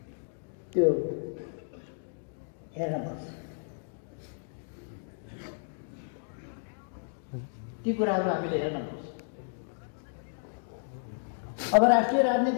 त्यो हेर्नुपर्छ। ती कुराहरू हामीले हेर्नुपर्छ। अब राष्ट्रिय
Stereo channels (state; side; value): silent; right; digital silence